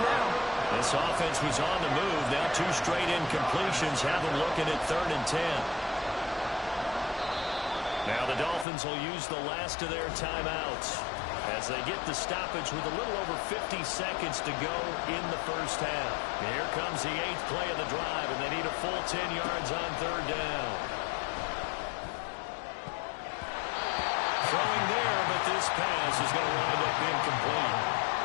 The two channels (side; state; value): right; drops out; at 8.7 s